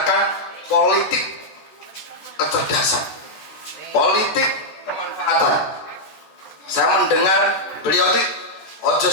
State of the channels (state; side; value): late; right; 14 ms